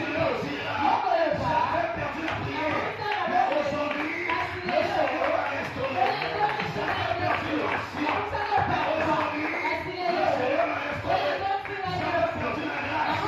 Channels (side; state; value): both; identical; correlation 1.00